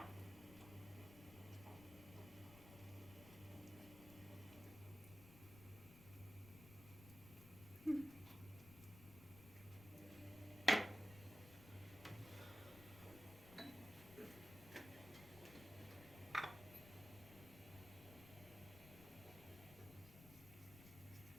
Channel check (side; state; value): left; noise; rumble, 15 dB below the sound